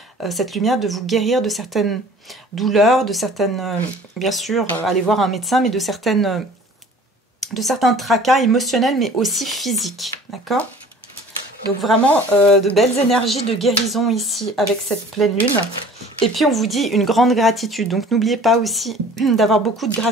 cette lumière, de vous guérir de certaines douleurs, de certaines, bien sûr, aller voir un médecin, mais de certains tracas émotionnels, mais aussi physiques. D'accord? Donc vraiment de belles énergies de guérison ici avec cette pleine lune. Et puis on vous dit une grande gratitude. Donc n'oubliez pas aussi d'avoir beaucoup de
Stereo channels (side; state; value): both; normal; correlation 0.47